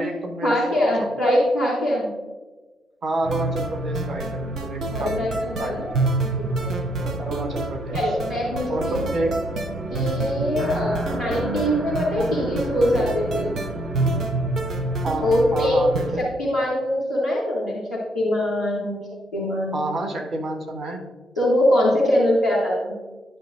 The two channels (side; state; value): both; normal; correlation 0.73